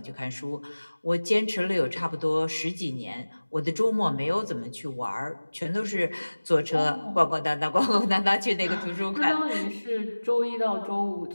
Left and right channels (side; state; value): both; inverted; correlation -1.00